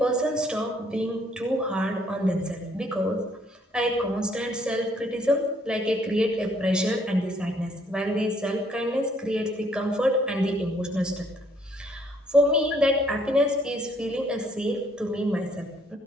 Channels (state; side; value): normal; both; correlation 0.66